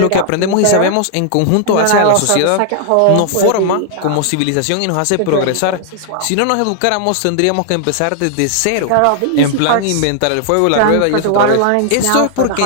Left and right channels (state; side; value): different; both; correlation 0.00